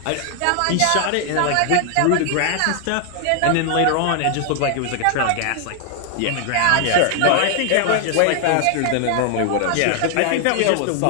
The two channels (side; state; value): both; different; correlation 0.00